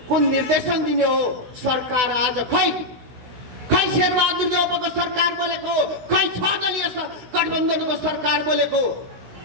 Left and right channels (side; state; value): left; late; 16 ms